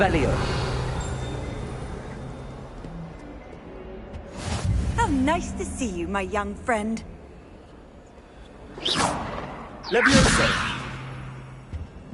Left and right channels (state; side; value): identical; both; correlation 1.00